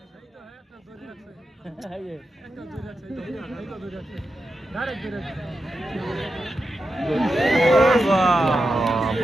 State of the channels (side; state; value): both; normal; correlation 0.89